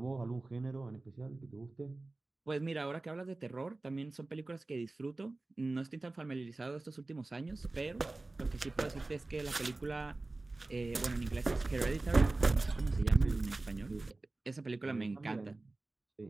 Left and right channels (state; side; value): quieter; left; 3.1 dB